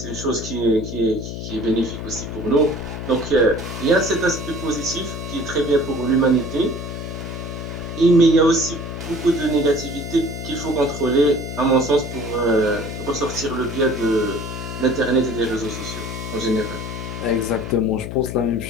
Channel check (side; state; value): left; noise; hum, 7 dB below the sound